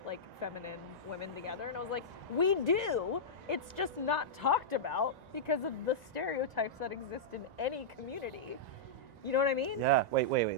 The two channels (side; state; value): left; late; 1.9 ms